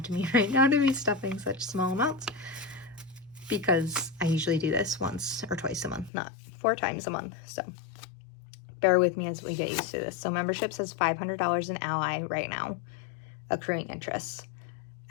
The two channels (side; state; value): right; drops out; at 6.1 s